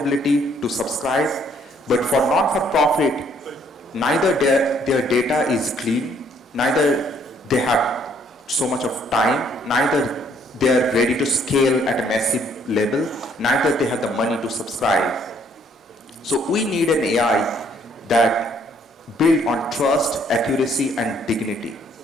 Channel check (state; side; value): normal; both; correlation 0.65